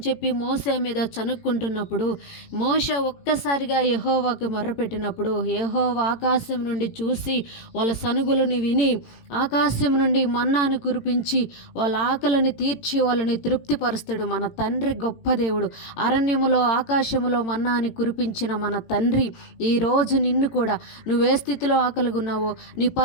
చెప్పి మోషే మీద చనుక్కుంటున్నప్పుడు మోషే ఒక్కసారిగా యెహోవాకు మొర్రపెట్టినప్పుడు యెహోవా ఆకాశం నుండి చూసి వాళ్ళ సనుగులని విని ఆకాశం నుండి మన్నాను కురిపించి వాళ్ళ ఆకలిని తీర్చి వాళ్ళని తృప్తిపరుస్తాడు. మన తండ్రి గొప్ప దేవుడు. అరణ్యములో ఆకాశములో మన్నాని కురిపించిన మన తండ్రి ఈరోజు నిన్ను కూడా నువ్వే స్థితిలో ఆకలిగా ఉన్నావో, నీ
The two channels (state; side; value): late; right; 18 ms